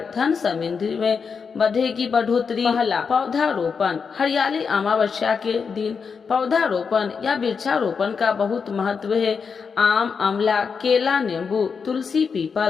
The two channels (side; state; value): right; quieter; 5.7 dB